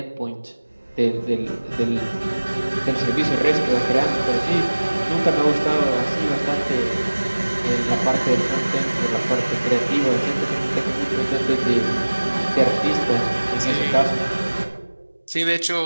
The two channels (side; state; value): both; inverted; correlation -1.00